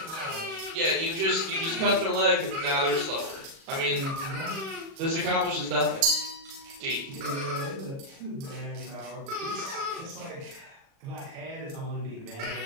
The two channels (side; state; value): left; late; 37 ms